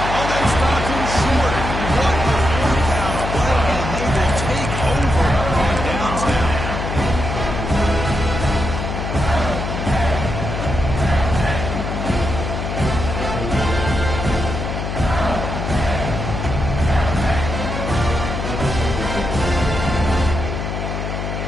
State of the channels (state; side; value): noise; left; hum, 4 dB below the sound